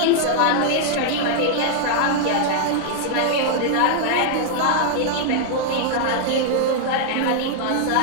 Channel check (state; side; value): different; both; correlation -0.01